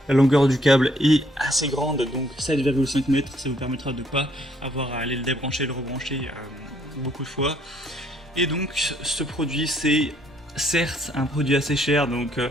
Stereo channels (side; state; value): both; normal; correlation 0.67